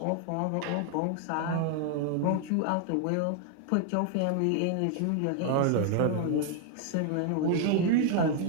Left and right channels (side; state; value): both; different; correlation 0.00